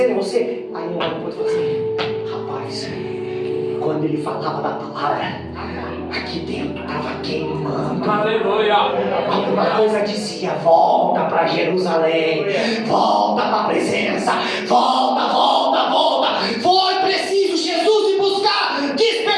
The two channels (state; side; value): identical; both; correlation 1.00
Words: em você? Aí um olha para o outro e fala assim: rapaz, quando ele falava da palavra, aqui dentro estava queimando. Aleluia. Alguma coisa dizia: volta para Jerusalém, volta para a presença, volta, volta, volta. Foi preciso Jesus ir buscar,